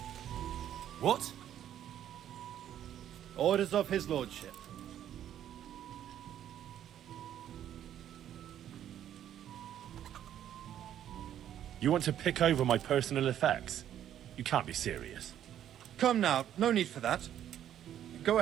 What? Orders of his lordship. You want to pick over my personal effects? You can't be serious. Come now, no need for that. Go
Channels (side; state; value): left; quieter; 10.8 dB